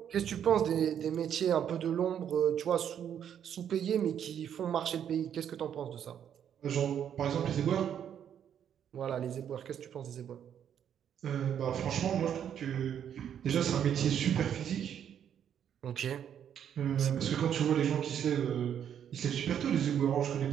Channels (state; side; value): quieter; left; 9.1 dB